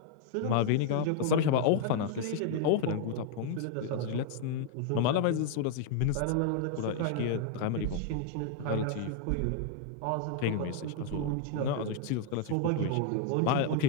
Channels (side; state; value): both; different; correlation 0.00